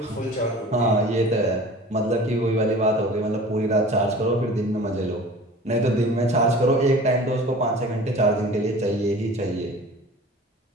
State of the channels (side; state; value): both; normal; correlation 0.42